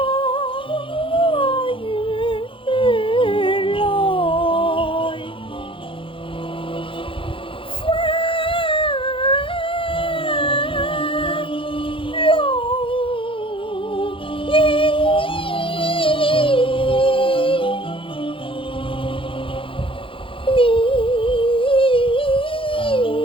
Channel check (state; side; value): late; right; 0.25 ms